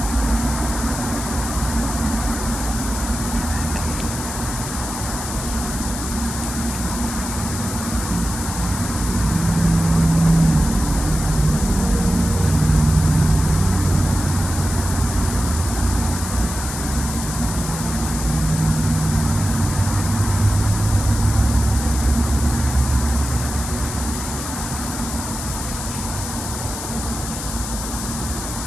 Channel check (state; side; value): noise; left; hiss, 7 dB below the sound